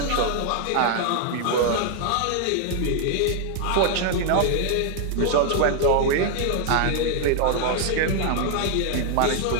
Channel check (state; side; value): different; both; correlation 0.00